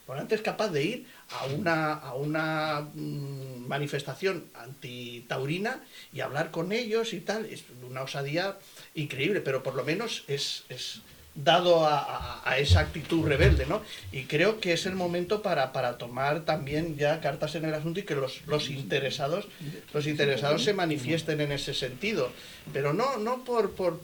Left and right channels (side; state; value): both; identical; correlation 1.00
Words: Morante es capaz de ir a una manifestación antitaurina y hablar con ellos y tal. Es una osadía increíble, pero por lo menos es dado a esa actitud rebelde, ¿no? Y creo que es el momento para tomar también ya cartas en el asunto y que los interesados se manifiesten en ese sentido, pero no